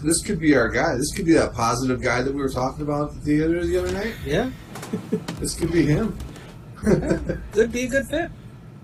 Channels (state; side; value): identical; both; correlation 1.00